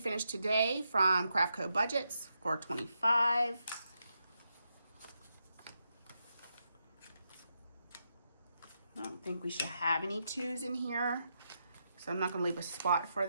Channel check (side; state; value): both; inverted; correlation -0.84